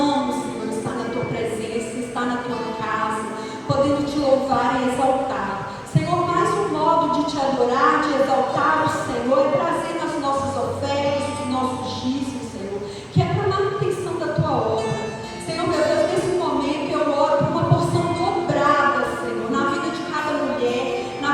Senhor, estar na Tua presença, estar na Tua casa, podendo Te louvar e exaltar. Senhor, mais um modo de Te adorar, de exaltar o Senhor, é trazer as nossas ofertas, os nossos dízimos, Senhor, que é para a manutenção da Tua obra. Senhor, meu Deus, nesse momento eu oro por uma porção dobrada, Senhor, na vida de cada mulher, na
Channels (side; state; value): both; identical; correlation 1.00